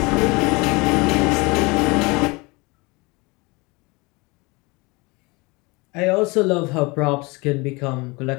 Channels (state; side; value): quieter; right; 25.8 dB